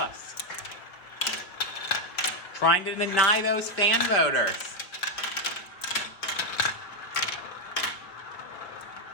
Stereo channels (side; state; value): right; late; 4.8 ms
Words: Trying to deny those fan voters.